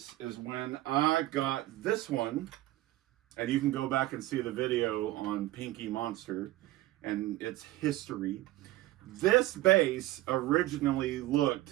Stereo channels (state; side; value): quieter; left; 16.5 dB